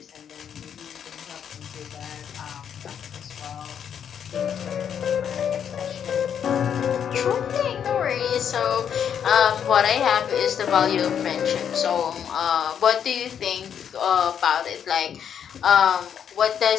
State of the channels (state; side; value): quieter; right; 8.4 dB